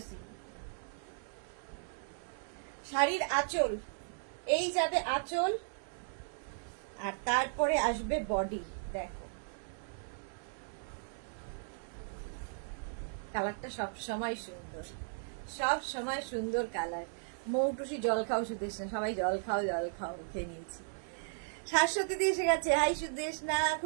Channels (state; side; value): silent; left; 54 dB below the other